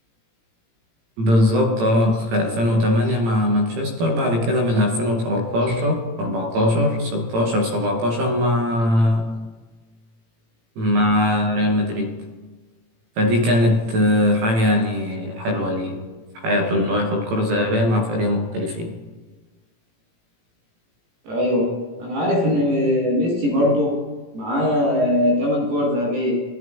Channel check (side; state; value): left; late; 18 ms